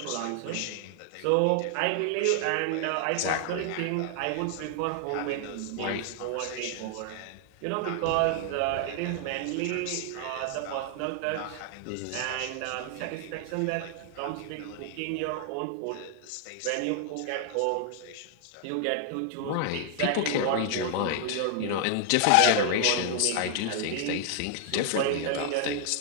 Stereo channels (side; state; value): both; different; correlation 0.00